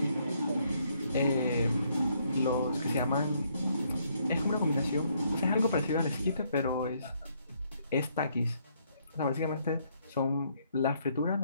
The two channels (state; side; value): inverted; both; correlation -0.70